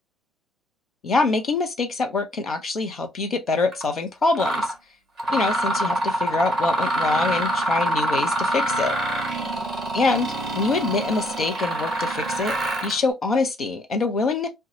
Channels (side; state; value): both; normal; correlation 0.67